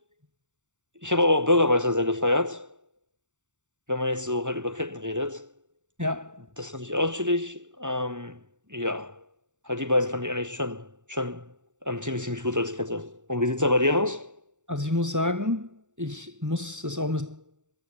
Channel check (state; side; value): late; left; 0.85 ms